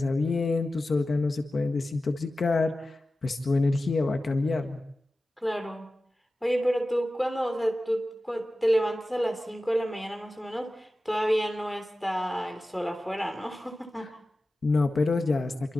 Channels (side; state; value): both; normal; correlation 0.95